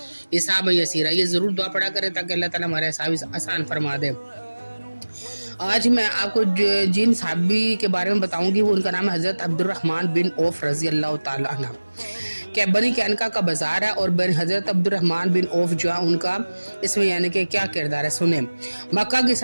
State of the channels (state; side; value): inverted; both; correlation -1.00